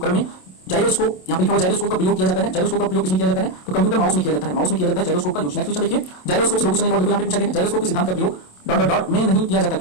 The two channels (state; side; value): late; right; 27 ms